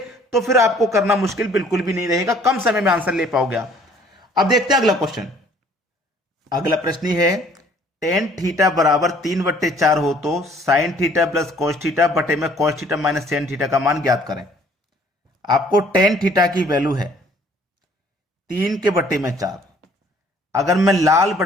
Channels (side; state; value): both; normal; correlation 0.58